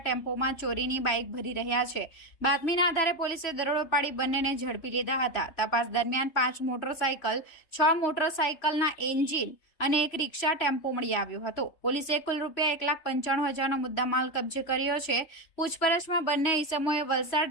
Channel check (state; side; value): late; right; 3.3 ms